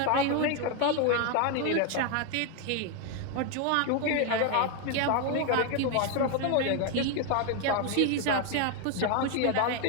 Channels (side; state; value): both; different; correlation 0.01